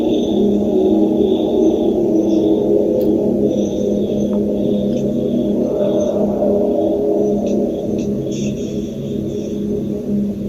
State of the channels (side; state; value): both; identical; correlation 1.00